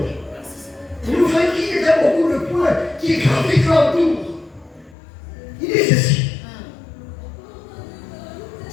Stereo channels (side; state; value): right; drops out; at 5.0 s